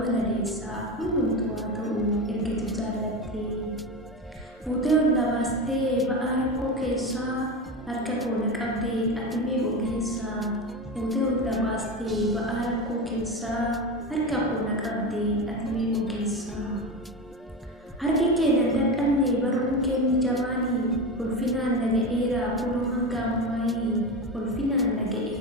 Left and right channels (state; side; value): normal; both; correlation 0.22